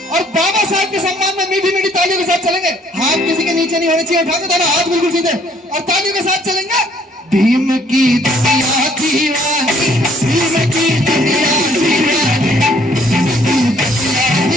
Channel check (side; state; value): both; normal; correlation 0.63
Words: और बाबा साहब के सम्मान में मीठी मीठी तालियों के साथ चलेंगे। हाथ किसी के नीचे नहीं होने चाहिए। उठा के दोनों हाथ बिल्कुल सीधे और तालियों के साथ चलेंगे। भीम की दुनिया दीवानी, भीम की दुनिया दीवानी,